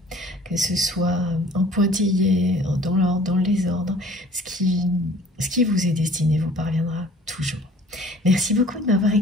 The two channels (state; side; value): normal; both; correlation 0.50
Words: que ce soit en pointillé, dans l'ordre, dans le désordre, ce qui vous est destiné vous parviendra toujours. Merci beaucoup de m'avoir